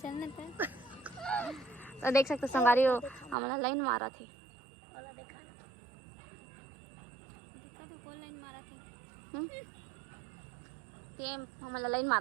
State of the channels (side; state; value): left; drops out; at 3.4 s